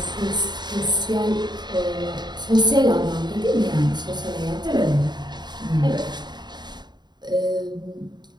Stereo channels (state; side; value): late; left; 0.21 ms